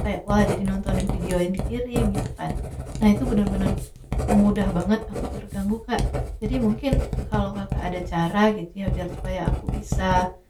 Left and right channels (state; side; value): identical; both; correlation 1.00